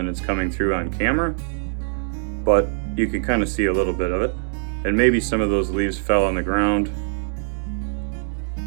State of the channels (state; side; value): silent; left; digital silence